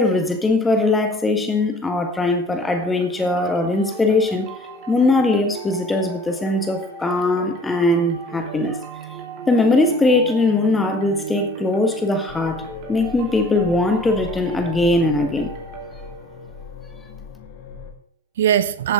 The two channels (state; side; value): normal; both; correlation 0.50